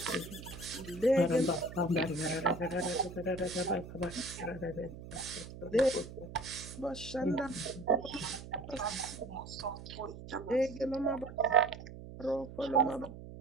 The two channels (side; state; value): right; noise; hum, 13 dB below the sound